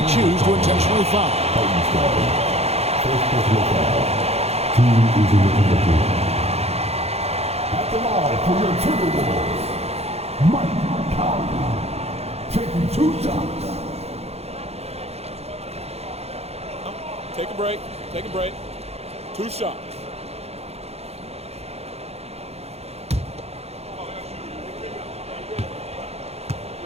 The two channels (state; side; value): late; left; 0.30 ms